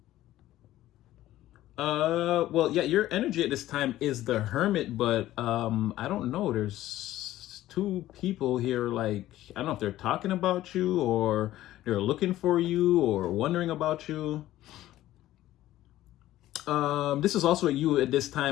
Well, yeah, your energy at this time is the Hermit, but I don't know. There's two people here, like, I don't know if they're talking about you or they're looking for you or wondering about you. This is also you at this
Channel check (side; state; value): right; quieter; 14.6 dB